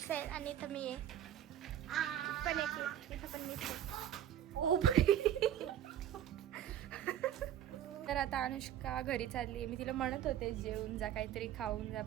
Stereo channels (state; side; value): quieter; left; 11.0 dB